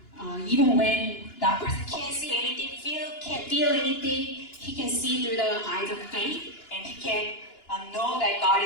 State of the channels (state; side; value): late; right; 2.9 ms